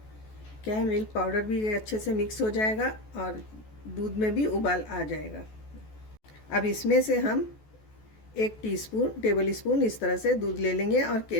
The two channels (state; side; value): late; right; 14 ms